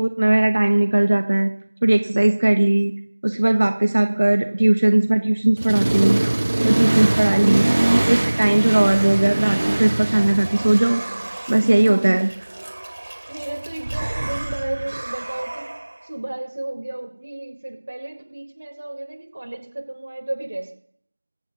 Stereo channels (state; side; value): inverted; both; correlation -1.00